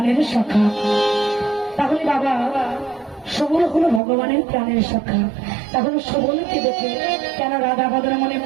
সখা। তাহলে বাবা, সবল হলো ভগবানের প্রাণের সখা। তাহলে সবলকে দেখে কেন রাধা বদনা মনে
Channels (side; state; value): left; drops out; at 4.0 s